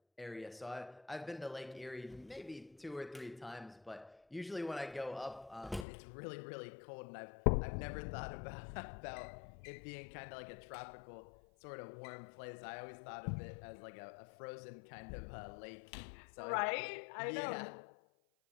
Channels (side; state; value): right; drops out; at 5.9 s